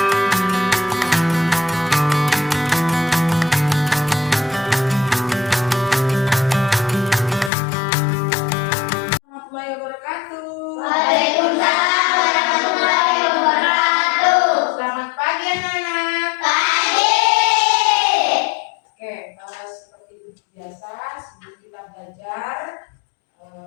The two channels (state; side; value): drops out; right; at 7.5 s